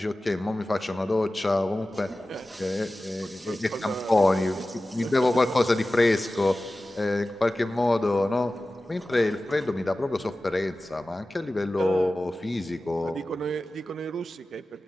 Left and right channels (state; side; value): normal; both; correlation 0.96